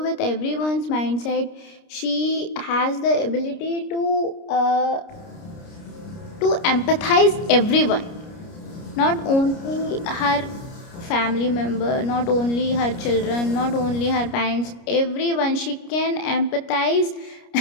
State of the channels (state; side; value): late; right; 29 ms